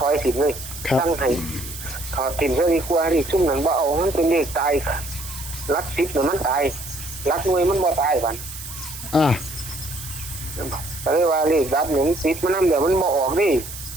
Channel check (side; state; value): right; noise; hiss, 11 dB below the sound